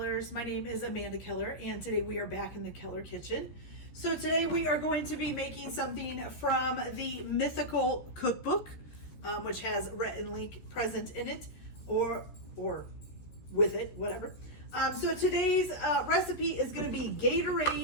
My name is Amanda Keller, and today we are back in the Keller kitchen. So today we are going to be making something from the Mythical Cookbook, which has Rhett and Link present in it, or with it, whatever. So today's recipe is going to be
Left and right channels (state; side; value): late; right; 14 ms